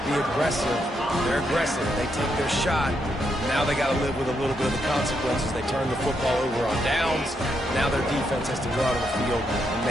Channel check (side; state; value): both; normal; correlation 0.79